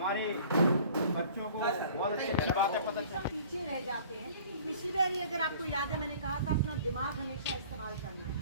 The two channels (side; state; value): both; inverted; correlation -0.49